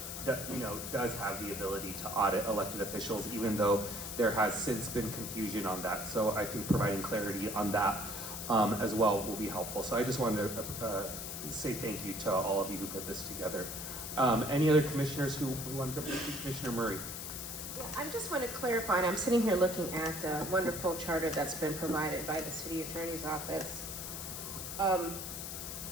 have the ability to audit elected officials, even though there has since been confusion on that. So I think providing clarity on that as well will be helpful. So I just wanted to say thank you to all of you who put this together. Any other commissioners who want to jump in? Commissioner Murray. Yeah, I just want to clarify, and I'm sitting here looking at the wonderful charter that's been provided by the city attorney's office. I'm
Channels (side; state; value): left; noise; hiss, 7 dB below the sound